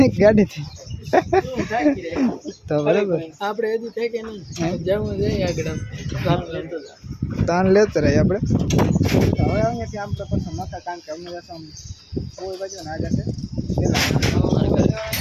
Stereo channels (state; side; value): identical; both; correlation 1.00